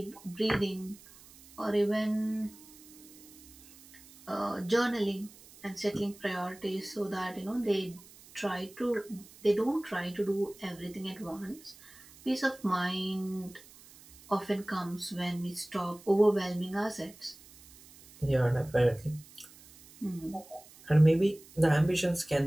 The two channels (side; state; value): right; noise; hiss, 22 dB below the sound